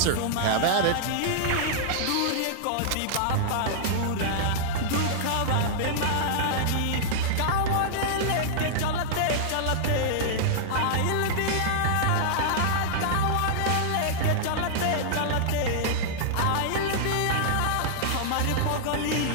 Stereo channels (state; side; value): different; both; correlation -0.01